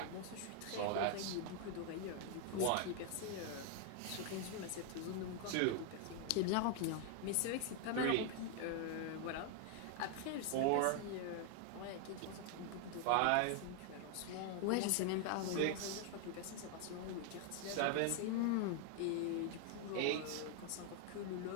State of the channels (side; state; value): both; different; correlation 0.00